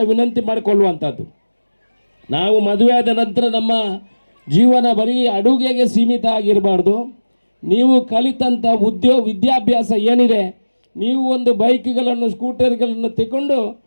ವಿನಂತಿ ಮಾಡಿಕೊಳ್ಳುವಂಥದ್ದು, ನಾವು ಮದುವೆ ಆದ ನಂತರ ನಮ್ಮ ಜೀವನ ಬರೀ ಅಡುಗೆಗೆ ಸೀಮಿತ ಆಗಿರಬಾರ್ದು. ನೀವು ಕಲಿತಂಥ ವಿದ್ಯಾಭ್ಯಾಸ ಏನಿದೆ, ನೀವು ಒಂದು ಬೈಕ್ಗಳನ್ನು, ಸ್ಕೂಟರ್ಗಳನ್ನು ತಗೊಂಡು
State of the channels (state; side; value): inverted; both; correlation -1.00